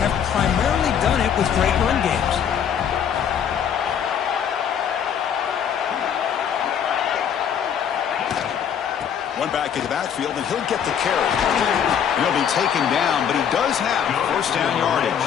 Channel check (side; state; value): right; quieter; 8.3 dB